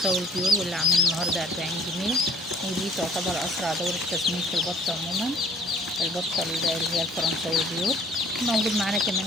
البيور واللي عامل النهارده 40 جنيه، ودي تعتبر اسرع دوره تسمين في البط عموما، البطه اللي هي الفرنساوي البيور. موجود معانا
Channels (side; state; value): both; normal; correlation 0.55